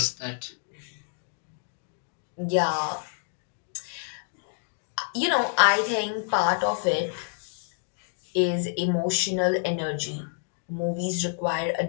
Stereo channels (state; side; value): silent; right; digital silence